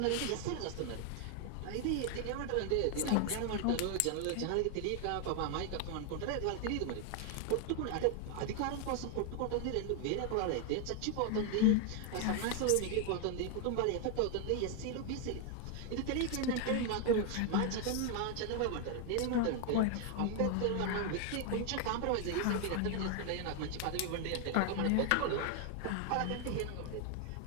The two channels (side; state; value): both; different; correlation 0.01